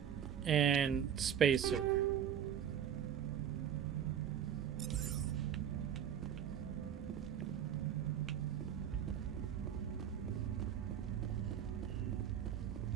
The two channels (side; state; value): left; quieter; 9.1 dB